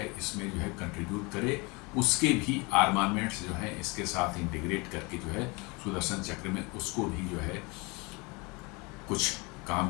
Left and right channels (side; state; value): right; quieter; 27.4 dB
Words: इसमें जो है कंट्रीब्यूट करे, उसके भी आर्मामेंट्स जो है इसके साथ इंटीग्रेट करके जो है सुदर्शन चक्र में उसको भी जो है कुछ काम